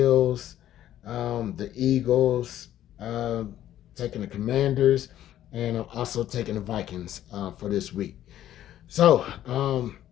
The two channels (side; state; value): right; quieter; 12.2 dB